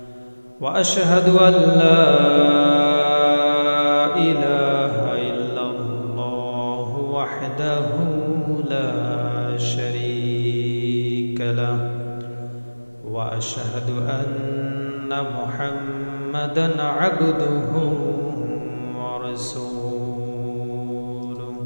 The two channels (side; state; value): both; inverted; correlation -1.00